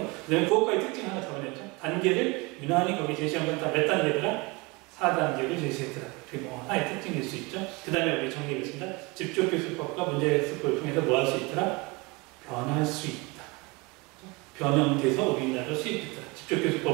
그 다음에 그것과의 특징 하나 잡아냈죠. 단계를 유난히 거기 제시한 건 다 몇 단계더라? 4단계를 제시했더라. 그게 뭐 하나의 특징일 수 있죠. 그 다음에 우리 정리하겠습니다. 집중교수법과 문제학습법을 통해서 뭐 할 수 있더라? 변할 수 있다. 변형돼서 우리나라로 수입했다.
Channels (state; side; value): quieter; left; 26.2 dB